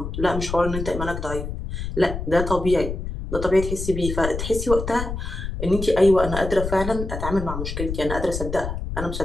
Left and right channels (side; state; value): left; noise; rumble, 5 dB below the sound